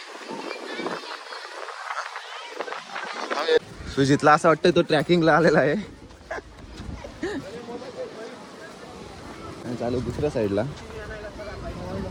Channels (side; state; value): both; identical; correlation 1.00